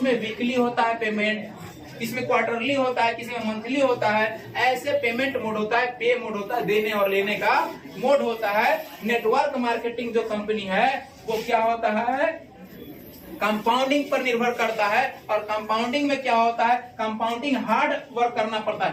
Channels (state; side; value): identical; both; correlation 1.00